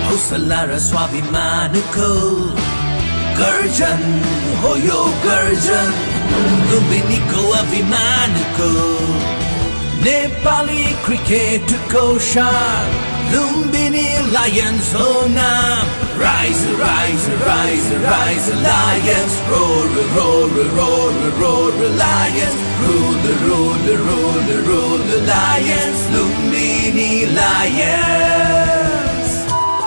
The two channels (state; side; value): inverted; both; correlation -1.00